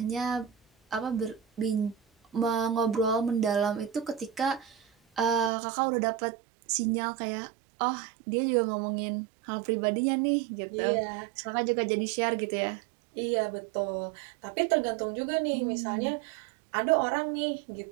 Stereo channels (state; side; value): drops out; left; at 5.5 s